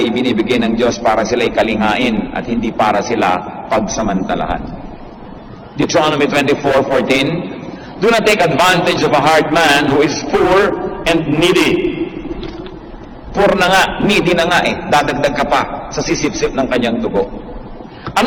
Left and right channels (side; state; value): both; identical; correlation 1.00